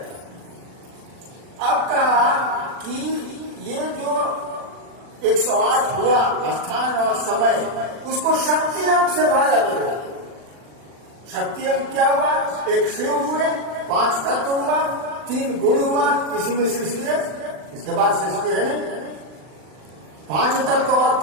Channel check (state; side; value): late; left; 40 ms